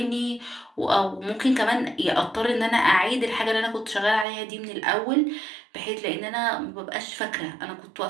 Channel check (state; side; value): drops out; left; at 4.2 s